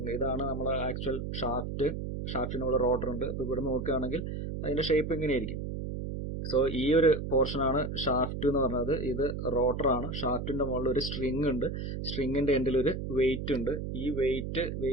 ഇതാണ് നമ്മളെ ആക്ച്വൽ ഷാഫ്റ്റിനുള്ള റോട്ടർ ഉണ്ട്. അപ്പൊ ഇവിടെ നോക്കുകയാണെങ്കിൽ അതിന്റെ ഷേപ്പ് ഇങ്ങനെയായിരിക്കും. സോ ഈ ഒരു പോർഷൻ ആണ് ഷാഫ്റ്റ് എന്ന് പറഞ്ഞത്. ഇത് റോട്ടർ ആണ്. ഷാഫ്റ്റിന്റെ മുകളിൽ ഒരു സ്ട്രിങ് ഉണ്ട്. സ്ട്രിങ്ങിന്റെ എൻഡിൽ ഒരു വെയിറ്റ് ഉണ്ട്. ഈ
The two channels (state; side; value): noise; right; hum, 5 dB below the sound